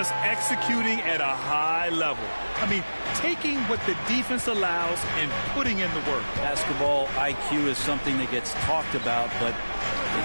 executing at a high level. I mean, taking what the defense allows and putting in the work. Basketball IQ is something that gets talked about, but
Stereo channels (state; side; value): inverted; both; correlation -1.00